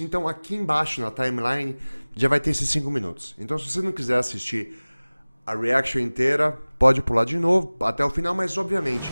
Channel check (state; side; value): inverted; both; correlation -1.00